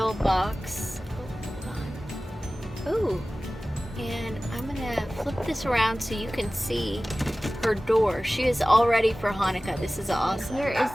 box. Oh, hold on. Ooh. And I'm gonna flip this around so you can see her door. She is all ready for Hanukkah. This is awesome. Here is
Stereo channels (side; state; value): both; normal; correlation 0.97